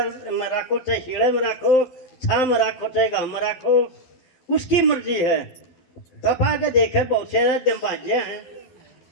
में रखो, चाहे शीड़े में रखो, छाम राखो चाहे घाम राखो, उसकी मर्जी है। तपा के देखे बहुत से दिमाजे हैं।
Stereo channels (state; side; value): late; right; 12 ms